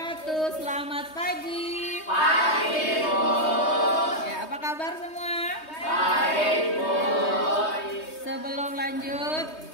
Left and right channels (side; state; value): right; late; 3.2 ms